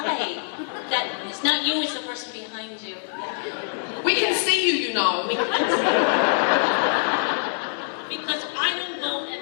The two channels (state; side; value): silent; right; digital silence